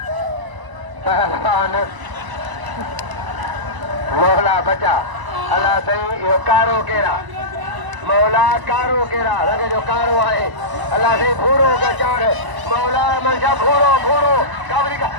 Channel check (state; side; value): late; left; 1.0 ms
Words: पहलवान मौला बचा अल्लाह सही यो कारो केरा मौला कारो केरा लगे जो कारो है अल्लाह से भूरो का चार मौला मंशा भूरो काबरी का